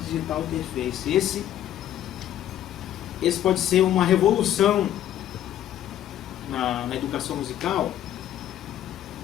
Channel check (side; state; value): right; quieter; 11.7 dB